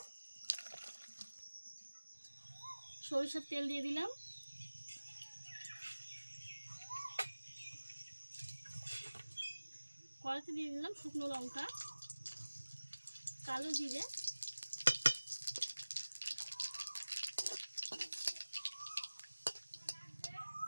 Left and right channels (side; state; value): both; inverted; correlation -1.00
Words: সরিষার তেল দিয়ে দিলাম, কড়াইতে দিয়ে দিলাম শুকনো লঙ্কা, কালো জিরে,